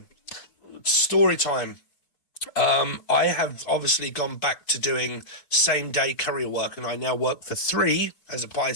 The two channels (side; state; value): right; late; 4.6 ms